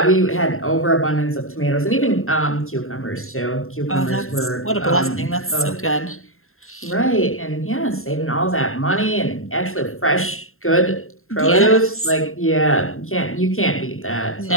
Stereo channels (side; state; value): right; late; 0.61 ms